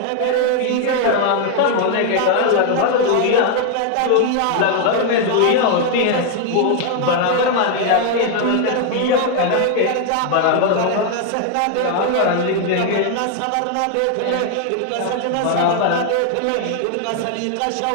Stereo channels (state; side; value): different; both; correlation 0.00